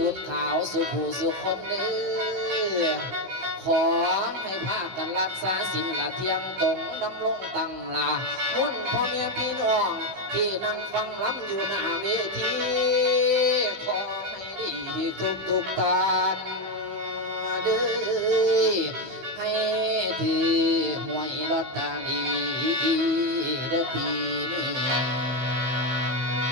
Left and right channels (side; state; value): left; late; 15 ms